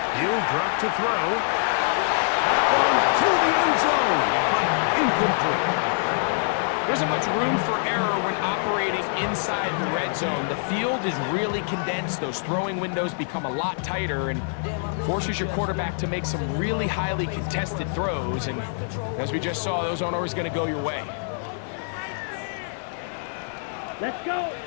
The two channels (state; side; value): silent; right; digital silence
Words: He'll drop to throw. To the end zone, but incomplete. There isn't much room for error when operating inside the red zone. The field is really condensed. Those throwing windows become a lot tighter and forces your quarterback to make some really highly contested throws. And as we just saw, those aren't always going to go your way. Let's go.